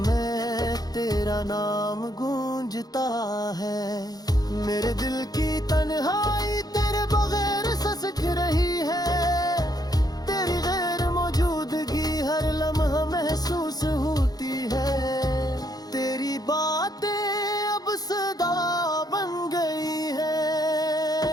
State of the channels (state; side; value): late; right; 0.19 ms